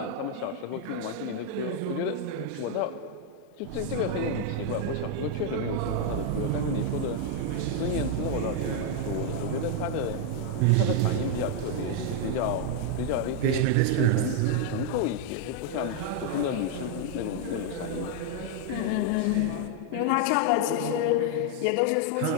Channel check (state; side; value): different; both; correlation 0.00